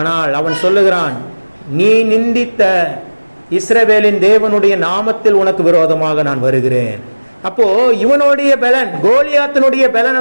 அவன் சொல்லுகிறான், நீ நிந்தித்த இஸ்ரவேலின் தேவனுடைய நாமத்தில் உனக்கு விரோதமாக நான் வருகிறேன். அப்போ இவனுடைய பலன், கோலியாத்தினுடைய பலன்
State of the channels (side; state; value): both; inverted; correlation -1.00